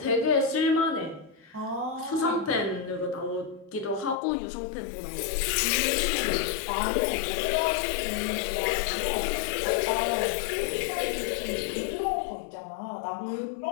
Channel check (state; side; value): drops out; right; at 4.2 s